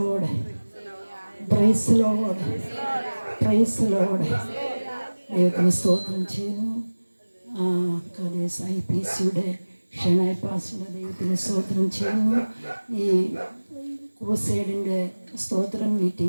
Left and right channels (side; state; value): both; inverted; correlation -1.00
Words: praise lord, praise lord. ദൈവത്തിന് സ്തോത്രം ചെയ്യുന്നു. IPCയുടെ ഷെനായ് പാസ്റ്ററുടെ ദൈവത്തിന് സ്തോത്രം ചെയ്യുന്നു. ഈ ക്രൂസൈഡിൻ്റെ സ്തോത്രം